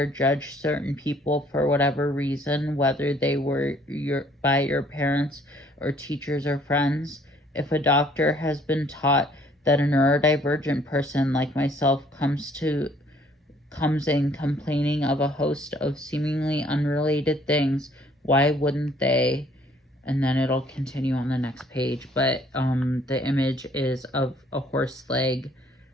judge certain people for whatever reason, whether they were by your parents or teachers or friends? If a doctor has been taught that a neurodivergent person like myself comes in complaining of a host of seemingly unrelated things, why wouldn't they? And then it'll continue on the next page, but the image is of a horse leg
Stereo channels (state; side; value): normal; both; correlation 0.61